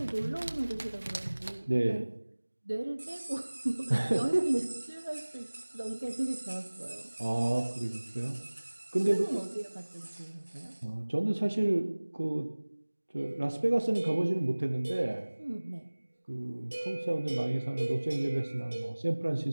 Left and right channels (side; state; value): both; inverted; correlation -1.00